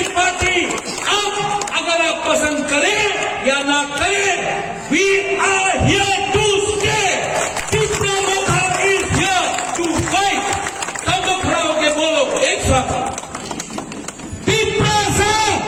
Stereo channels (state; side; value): identical; both; correlation 1.00